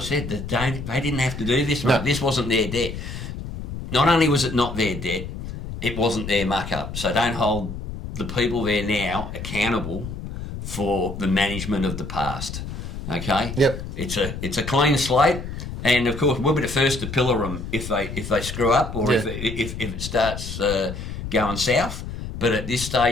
they didn't have to do this. No. This wasn't their debt. Not only was it not their debt, it wasn't their muck-up. So don't hold the people there now accountable for the management of the past. Okay? Yep. It's a clean slate. And of course, we'll be the first to pillar them if they screw up or if it starts going south. But at this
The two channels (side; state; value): left; noise; rumble, 8 dB below the sound